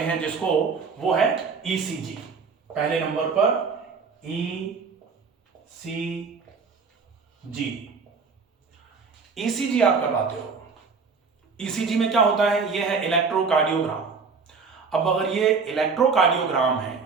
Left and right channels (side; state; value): left; quieter; 5.1 dB